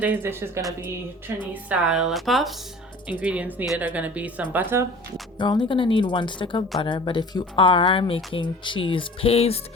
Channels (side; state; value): both; normal; correlation 0.43